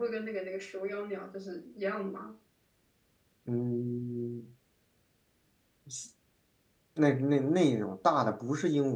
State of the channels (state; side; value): identical; both; correlation 1.00